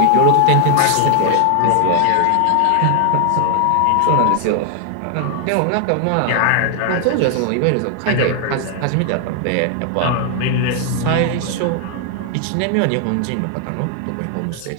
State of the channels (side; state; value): both; different; correlation 0.00